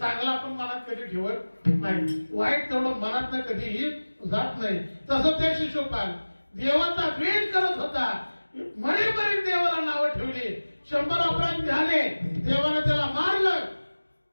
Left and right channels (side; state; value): both; inverted; correlation -1.00